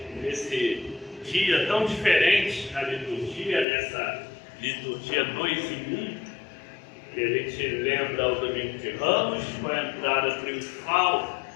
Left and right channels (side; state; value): right; drops out; at 3.7 s